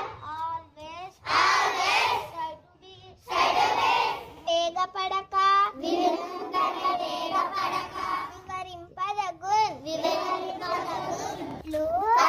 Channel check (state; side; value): identical; both; correlation 1.00